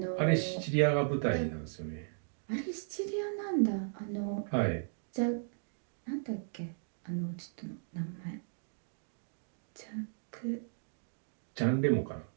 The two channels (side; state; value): left; silent; digital silence